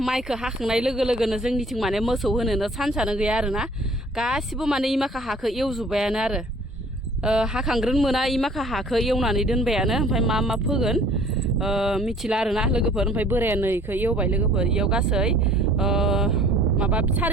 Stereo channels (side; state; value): both; normal; correlation 0.53